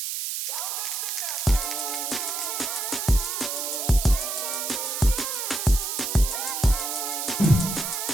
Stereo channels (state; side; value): noise; right; hiss, 3 dB below the sound